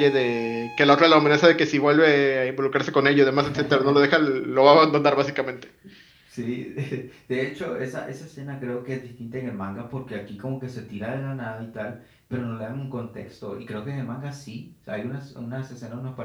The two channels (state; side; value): identical; both; correlation 1.00